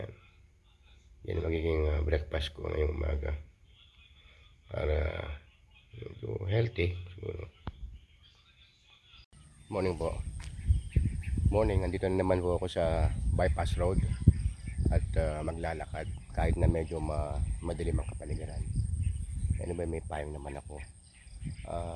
Yan yung magiging breakfast ko ngayong umaga. Para medyo healthy siguro. Morning po. Morning, nandito na naman po ako sa bypass road at maglalakad kahit na medyo madilim ang kapaligiran. Anyway, may payong naman ako.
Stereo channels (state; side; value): identical; both; correlation 1.00